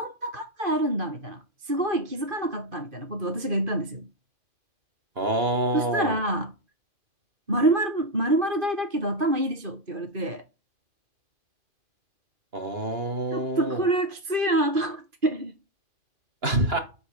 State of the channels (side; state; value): left; late; 2.5 ms